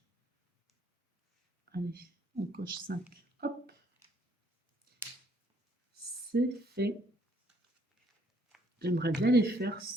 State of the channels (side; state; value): both; normal; correlation 0.66